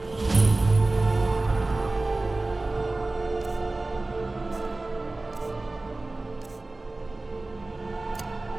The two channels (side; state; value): left; quieter; 3.0 dB